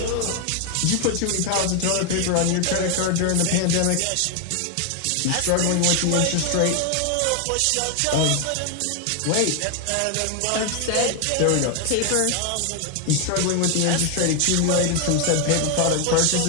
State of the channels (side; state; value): both; different; correlation 0.01